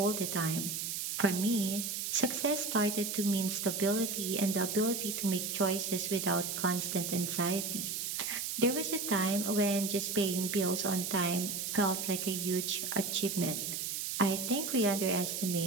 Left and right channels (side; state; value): right; noise; hiss, 3 dB below the sound